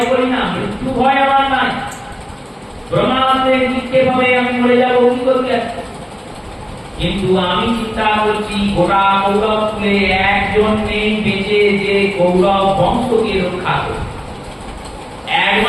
করি না, মৃত্যু ভয় আমার নাই। ব্রহ্মাস্ত্রের নিক্ষেপ হবে, আমি মরে যাবো, কি করতে যাচ্ছি? কিন্তু আমি চিন্তা করছি গোটা কৌরব কুলে একজন নেই বেঁচে যে কৌরব বংশকে রক্ষা করবে।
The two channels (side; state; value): both; identical; correlation 1.00